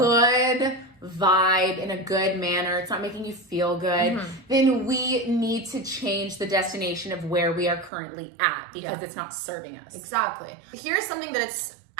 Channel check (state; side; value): drops out; left; at 7.9 s